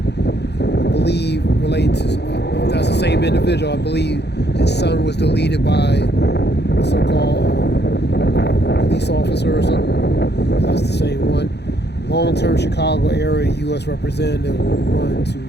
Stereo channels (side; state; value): right; late; 0.49 ms